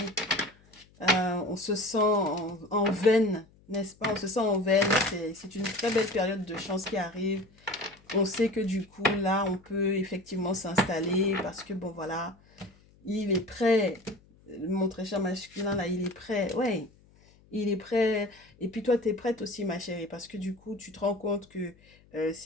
On se sent en veine, n'est-ce pas? On se sent en veine. C'est une très belle période de chance qui arrive. On sait que du coup, là, on peut effectivement s'installer parce que, bon, voilà, il est prêt. Mon très cher masculin, là, il est prêt. Ouais, il est prêt. Et puis toi, tu es prête aussi, ma chérie, parce que du coup, tu te rends compte que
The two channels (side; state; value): left; noise; hum, 29 dB below the sound